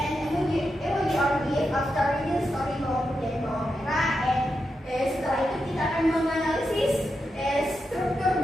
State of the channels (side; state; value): both; normal; correlation 0.87